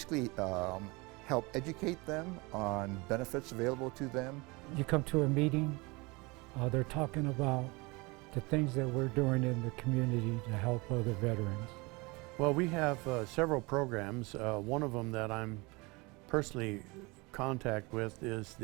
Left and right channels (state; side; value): quieter; left; 25.8 dB